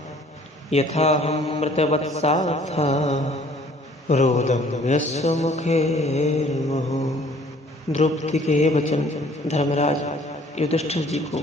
यथा हम मृतवत्सा था रोदम यस्य मुखेर्मुहुः। द्रौपदी के ये वचन धर्मराज युधिष्ठिर जी को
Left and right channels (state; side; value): normal; both; correlation 0.56